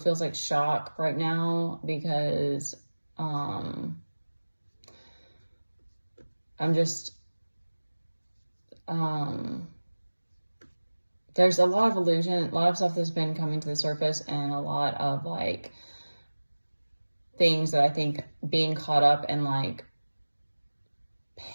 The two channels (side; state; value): both; inverted; correlation -1.00